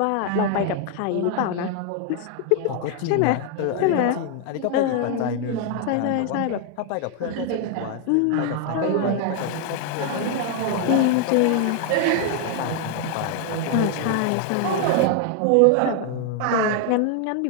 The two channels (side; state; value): both; different; correlation 0.00